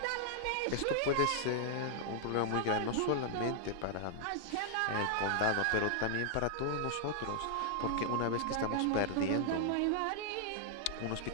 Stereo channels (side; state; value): both; different; correlation -0.01